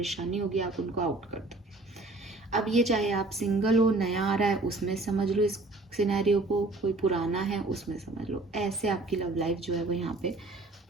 होगी, आप उनको आउट कर दोगे। अब ये चाहे आप सिंगल हो, नया आ रहा है उसमें समझ लो इस सिनेरियो को, कोई पुराना है उसमें समझ लो, ऐसे आपकी लव लाइफ जो है वो यहाँ पे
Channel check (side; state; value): left; quieter; 3.0 dB